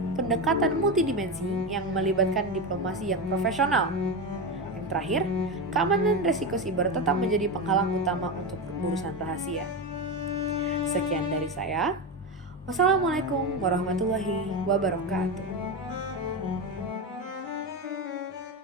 pendekatan multidimensi yang melibatkan diplomasi yang profesional. Yang terakhir, keamanan resiko siber tetap menjadi penghalang utama untuk urusan rahasia. Sekian dari saya. Wassalamualaikum warahmatullahi wabarakatuh.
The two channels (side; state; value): both; normal; correlation 0.16